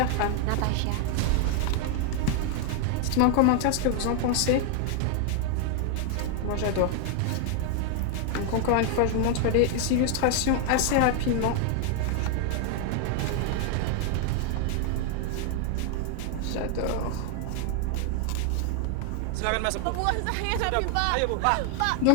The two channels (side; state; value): both; different; correlation 0.00